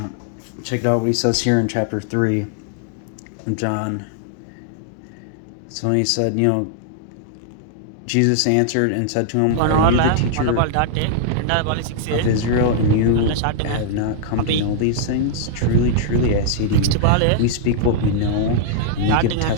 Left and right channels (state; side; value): different; both; correlation -0.01